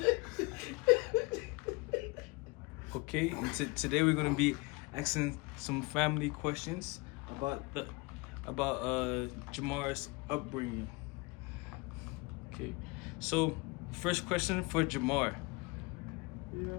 Okay, and today we're gonna be asking some family questions about Jamar's upbringing. Okay, so first question for Jamar:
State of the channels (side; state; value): right; quieter; 26.5 dB